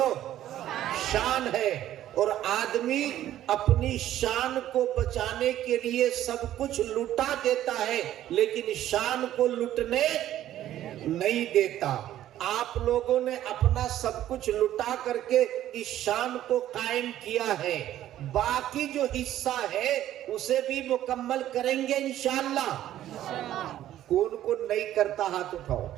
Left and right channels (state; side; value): quieter; left; 12.6 dB